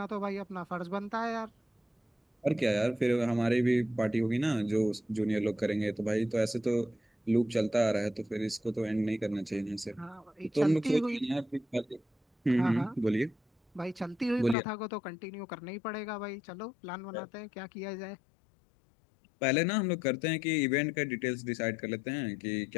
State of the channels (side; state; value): right; drops out; at 14.6 s